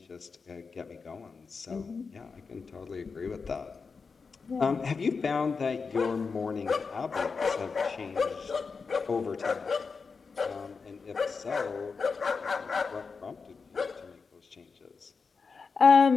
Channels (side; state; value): right; quieter; 5.0 dB